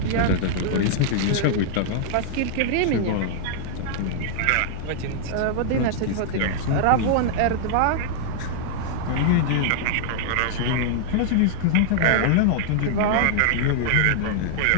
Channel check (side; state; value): both; different; correlation -0.01